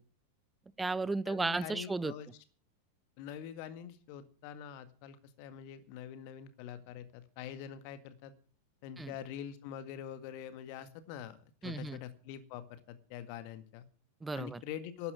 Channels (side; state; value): both; normal; correlation 0.63